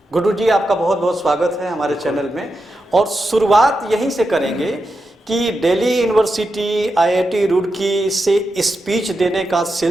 गुड्डू जी, आपका बहुत बहुत स्वागत है हमारे चैनल में। और शुरुआत यहीं से करेंगे कि दिल्ली यूनिवर्सिटी, आईआईटी रुड़की से स्पीच देने का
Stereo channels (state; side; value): normal; both; correlation 0.88